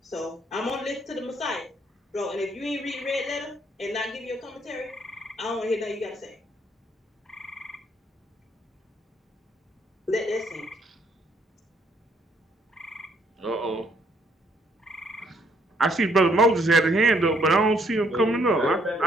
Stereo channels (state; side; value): normal; both; correlation 0.68